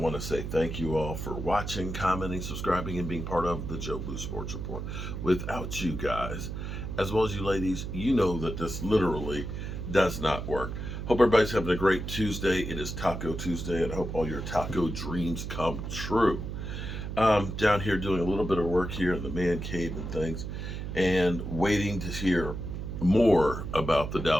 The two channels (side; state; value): right; noise; hum, 6 dB below the sound